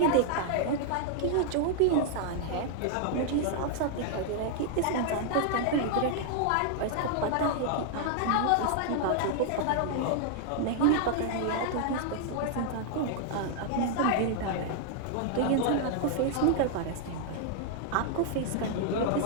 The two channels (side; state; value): both; different; correlation -0.01